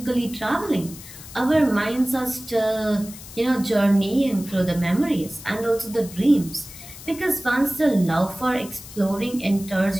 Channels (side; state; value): left; noise; hiss, 16 dB below the sound